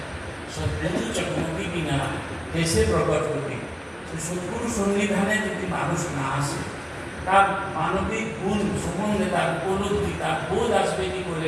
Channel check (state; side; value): identical; both; correlation 1.00